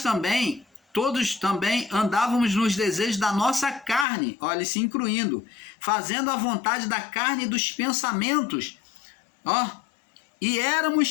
também, todos também andávamos nos desejos da nossa carne, olha, se incluindo, fazendo a vontade da carne e dos pensamentos, e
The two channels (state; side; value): drops out; right; at 4.0 s